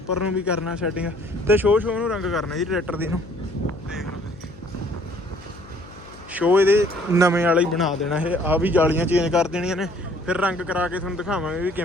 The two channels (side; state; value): left; noise; hum, 20 dB below the sound